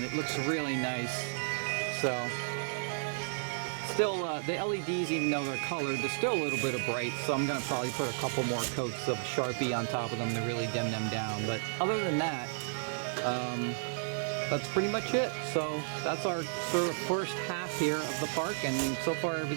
it looks really nice. So still, the LEDs, even though they're colored, they're still a little bit of bright. So I'm going to probably put a couple more coats of Sharpie on top of them to really dim them down. But other than that, that's pretty much it. So that's our sort of first half here of the park, and so far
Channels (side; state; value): left; silent; 56 dB below the other